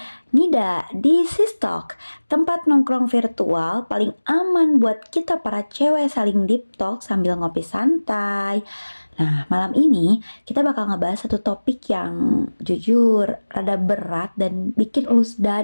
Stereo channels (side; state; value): both; inverted; correlation -1.00